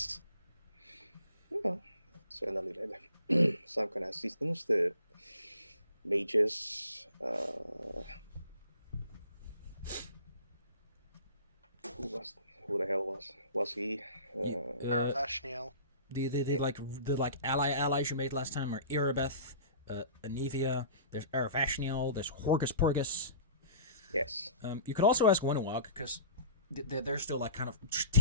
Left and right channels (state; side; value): inverted; both; correlation -0.43